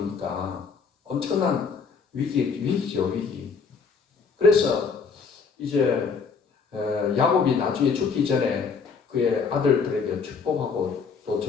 엄청난 위기죠, 위기. 그래서 이제 야곱이 나중에 죽기 전에 그의 아들들에게 축복하고 또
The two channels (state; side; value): quieter; right; 5.4 dB